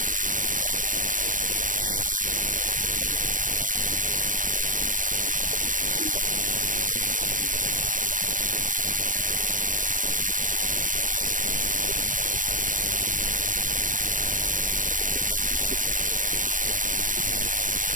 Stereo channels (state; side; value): late; left; 0.38 ms